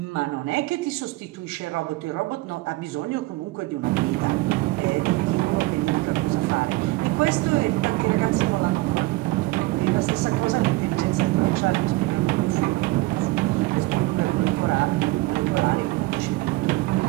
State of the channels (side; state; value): left; quieter; 20.7 dB